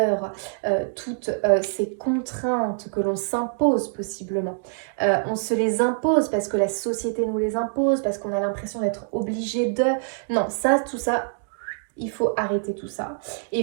toutes ces contraintes que l'on s'impose possiblement. On se les impose parce que la société nous les impose, parce qu'on a l'impression d'être obligé de... Non, ça, tout ça, il faut arrêter tout ça. Et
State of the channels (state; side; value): silent; left; digital silence